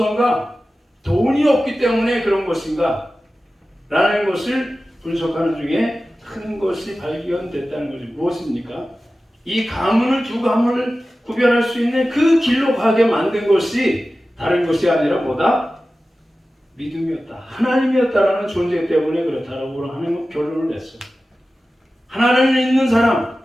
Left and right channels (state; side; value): normal; both; correlation 0.95